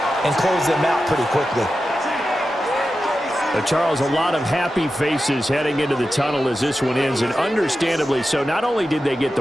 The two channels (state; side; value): normal; both; correlation 0.92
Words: and closed them out pretty quickly. Charles, a lot of happy faces heading into the tunnel as this one ends, and understandably so. Not only did they get